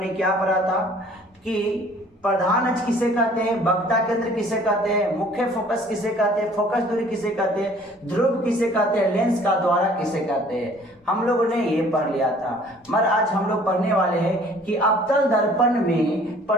क्या पढ़ा था कि प्रधान अक्ष किसे कहते हैं, वक्रता केंद्र किसे कहते हैं, मुख्य फोकस किसे कहते हैं, फोकस दूरी किसे कहते हैं, ध्रुव किसे कहते हैं, लेंस का द्वारा किसे कहते हैं। हम लोगों ने ये पढ़ लिया था। मगर आज हम लोग पढ़ने वाले हैं कि अवतल दर्पण में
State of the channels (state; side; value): normal; both; correlation 0.54